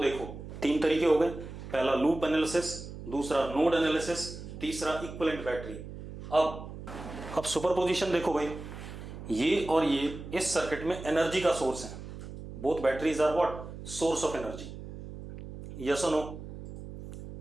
देखो, 3 तरीके हो गए। पहला लूप एनालिसिस, दूसरा नोड एनालिसिस, तीसरा इक्विवेलेंट बैटरी। अब सुपरपोजिशन देखो भाई, ये और ये इस सर्किट में एनर्जी का सोर्स है। Both batteries are what? Source of energy. Yes और नो?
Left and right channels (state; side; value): noise; right; hum, 11 dB below the sound